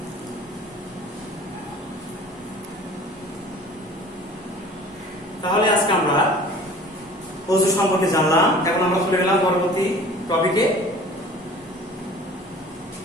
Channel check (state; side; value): normal; both; correlation 0.45